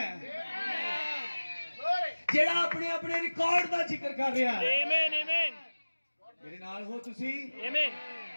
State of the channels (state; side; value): inverted; both; correlation -1.00